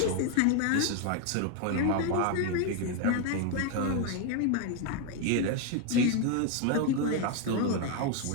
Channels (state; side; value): different; both; correlation 0.01